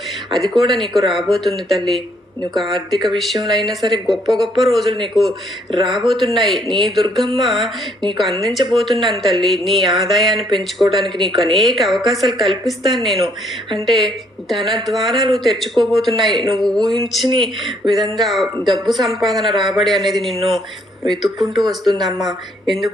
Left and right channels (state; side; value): normal; both; correlation 0.68